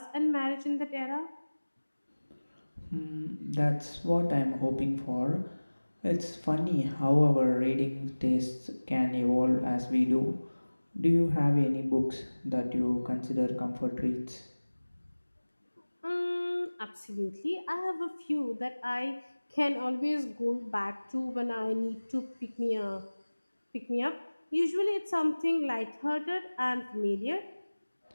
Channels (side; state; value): both; inverted; correlation -1.00